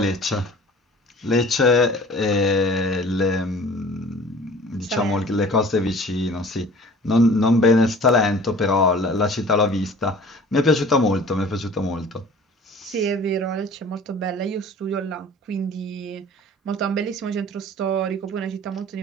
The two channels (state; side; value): normal; both; correlation 0.46